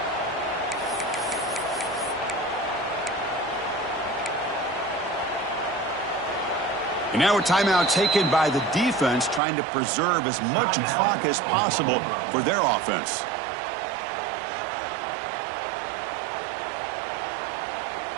And now a timeout taken by the defense, trying to preserve as much clock as possible for their offense.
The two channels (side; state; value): left; drops out; at 9.4 s